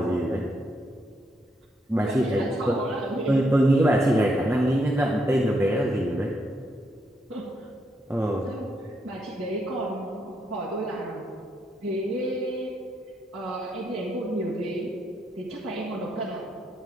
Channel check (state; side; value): normal; both; correlation 0.77